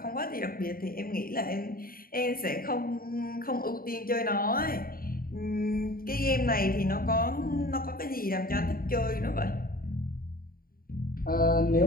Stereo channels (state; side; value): late; right; 0.42 ms